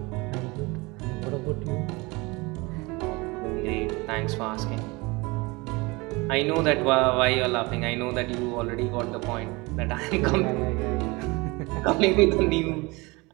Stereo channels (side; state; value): left; quieter; 24.8 dB